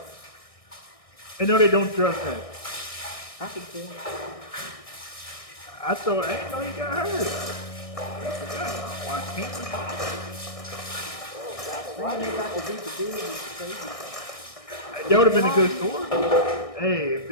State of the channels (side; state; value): right; late; 1.6 ms